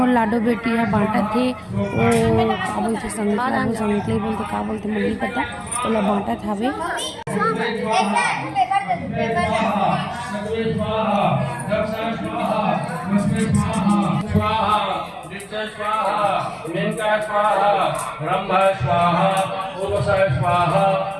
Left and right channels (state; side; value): identical; both; correlation 1.00